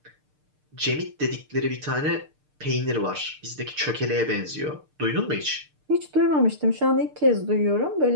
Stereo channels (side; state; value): left; late; 6.6 ms